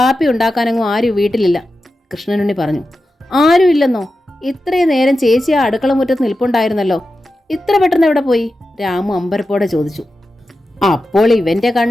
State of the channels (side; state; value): both; normal; correlation 0.91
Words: ഉണ്ടാക്കാനങ്ങും ആരും വീട്ടിലില്ല, കൃഷ്ണനുണ്ണി പറഞ്ഞു. ആരും ഇല്ലെന്നോ? ഇത്രയും നേരം ചേച്ചി ആ അടുക്കള മുറ്റത്ത് നിൽപ്പുണ്ടായിരുന്നല്ലോ. ഇത്ര പെട്ടെന്ന് എവിടെ പോയി? രാമു അമ്പരപ്പോടെ ചോദിച്ചു. അപ്പോൾ ഇവൻ്റെ